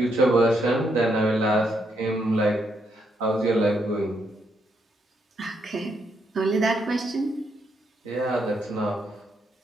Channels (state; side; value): normal; both; correlation 0.77